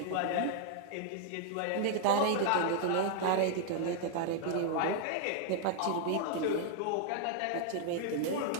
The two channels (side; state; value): both; different; correlation 0.00